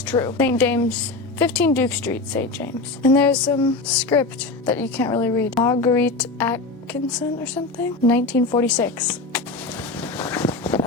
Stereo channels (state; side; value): quieter; right; 3.5 dB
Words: true. St. James, 15 Duke Street, St. James. And there's some script that you can't really read. Marguerite Atkinson or something? 1946.